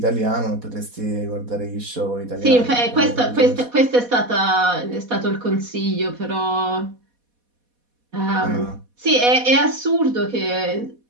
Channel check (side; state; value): left; late; 4.1 ms